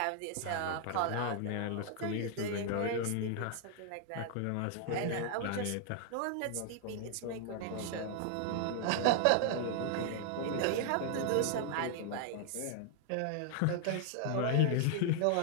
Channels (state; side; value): different; both; correlation 0.00